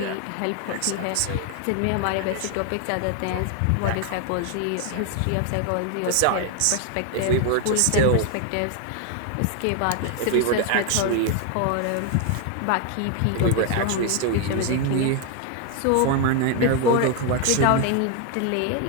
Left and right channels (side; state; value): both; different; correlation 0.01